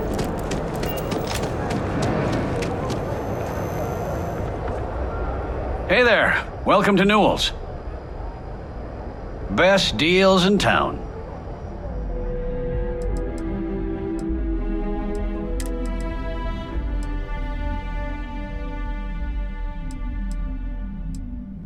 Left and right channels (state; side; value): identical; both; correlation 1.00